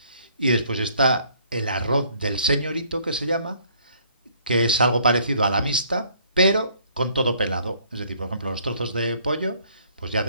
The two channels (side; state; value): both; inverted; correlation -0.62